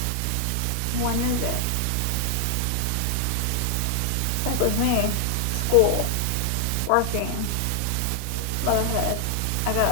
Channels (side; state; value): both; different; correlation 0.00